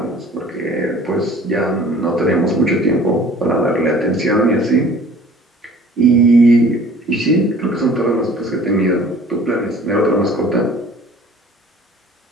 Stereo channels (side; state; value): both; normal; correlation 0.49